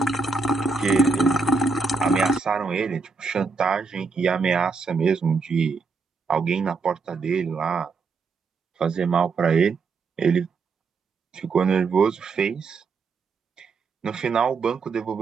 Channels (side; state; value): left; quieter; 4.4 dB